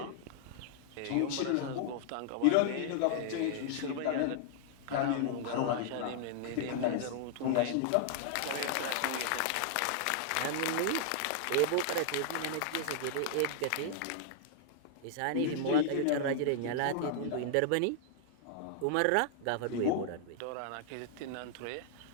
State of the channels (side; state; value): both; different; correlation -0.01